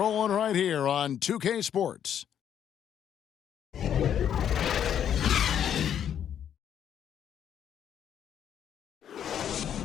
right here on 2K Sports.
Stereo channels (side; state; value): right; quieter; 9.3 dB